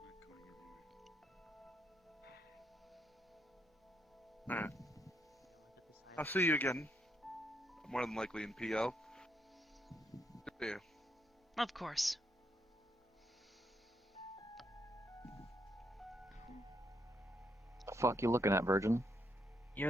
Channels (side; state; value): both; normal; correlation 0.77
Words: Alright. I'll see you again. More than likely in PL. See you. Of course. The fuck you looking at, Virgin? You're